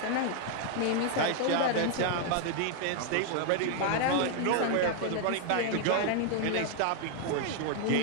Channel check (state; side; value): different; both; correlation 0.00